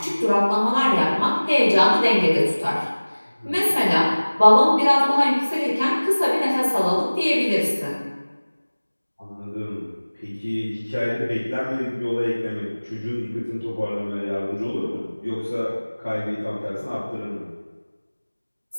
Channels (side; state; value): both; inverted; correlation -1.00